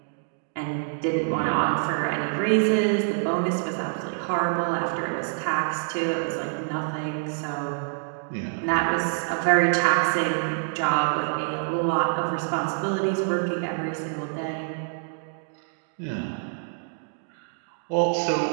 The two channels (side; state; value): left; silent; digital silence